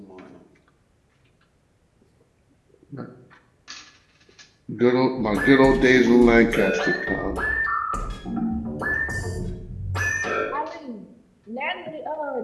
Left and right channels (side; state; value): both; identical; correlation 1.00